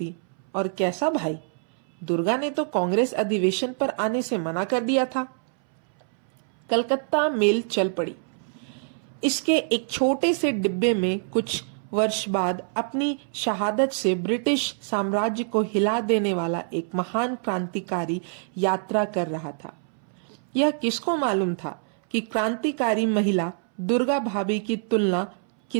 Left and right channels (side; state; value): left; silent; 61 dB below the other